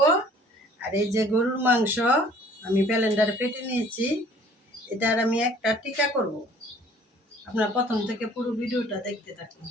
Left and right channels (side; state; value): both; normal; correlation 0.54